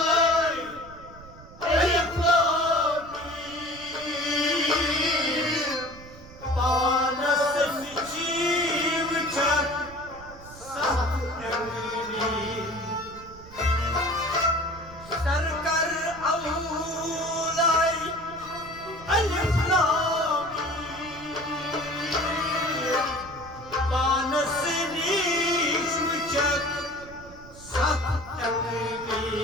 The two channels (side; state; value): right; noise; rumble, 19 dB below the sound